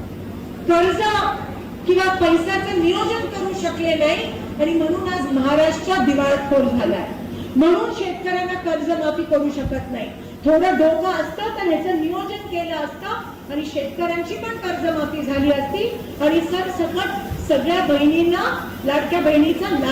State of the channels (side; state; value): both; identical; correlation 1.00